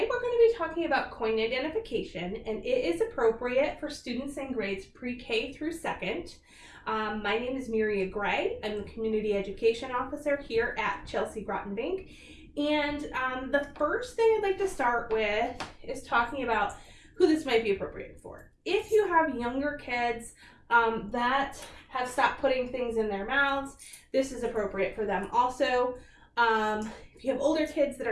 we're going to be talking about coin identification, and it is appropriate for students in grades pre-K through 2nd. My name is Miria Gray. I'm the Community Education Officer here at Chelsea Groton Bank, and the first thing I'd like to start with is talking about who this might be appropriate for. If you have younger kids that have stopped putting things in their mouths, this is appropriate for them. Also, if you have older kids that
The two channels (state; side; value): identical; both; correlation 1.00